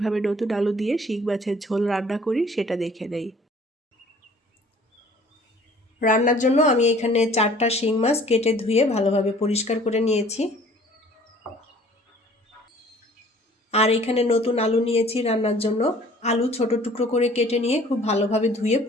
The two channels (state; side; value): normal; both; correlation 0.53